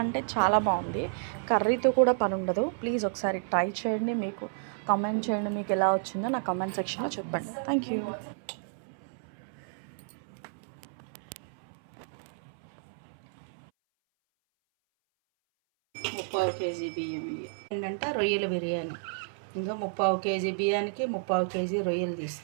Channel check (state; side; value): silent; left; 57 dB below the other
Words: అంటే చాలా బాగుంది. కర్రీతో కూడా పని ఉండదు. ప్లీజ్ ఒకసారి ట్రై చేయండి. మీకు కామెంట్ చేయండి, మీకు ఎలా వచ్చిందో నా కామెంట్ సెక్షన్లో చెప్పండి. Thank you. ముప్పావు కేజీ బియ్యం ఏంటంటే రొయ్యల బిర్యానీ. ఇంకా ముప్పావు కేజీ బియ్యానికి ముప్పావు కేజీ రొయ్యలు తీసి